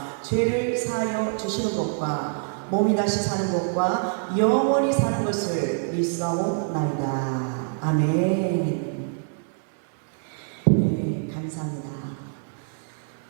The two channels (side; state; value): left; silent; 61 dB below the other